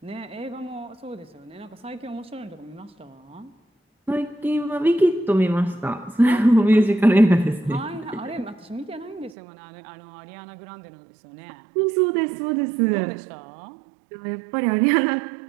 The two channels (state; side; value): drops out; left; at 9.3 s